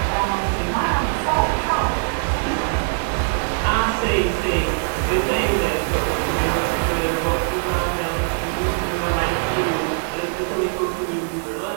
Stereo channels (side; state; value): left; silent; digital silence